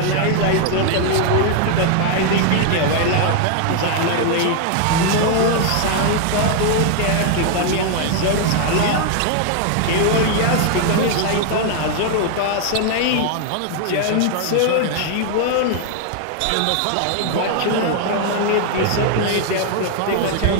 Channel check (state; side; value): different; both; correlation 0.00